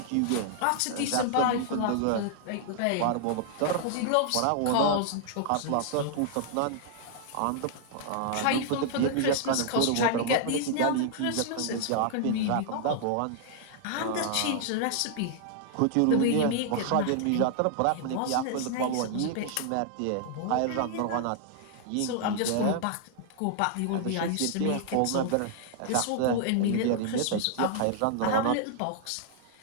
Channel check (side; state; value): both; different; correlation -0.01